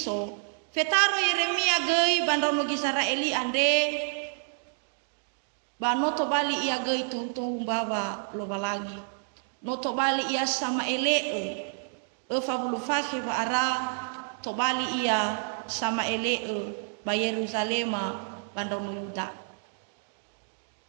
fetaro Yeremia gei bandau nugi Israeli ande ba noto bali ia gei tuntung baba lo balangi noto bali ia sama ele fabulu fakhi ba ara to bali ia sama ele ba Yerusalema bandau nu Yuda.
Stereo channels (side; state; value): left; silent; 59 dB below the other